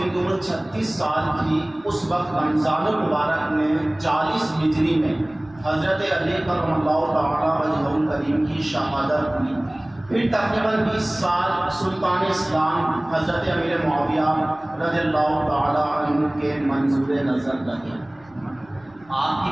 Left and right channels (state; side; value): noise; right; rumble, 29 dB below the sound